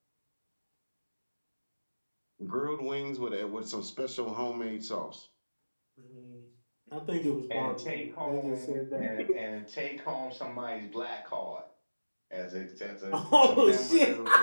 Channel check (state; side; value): inverted; both; correlation -1.00